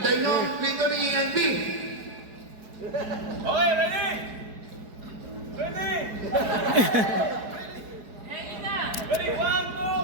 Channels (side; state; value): left; late; 4.7 ms